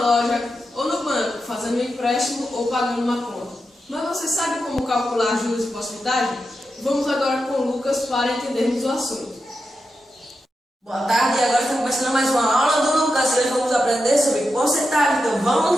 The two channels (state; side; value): normal; both; correlation 0.88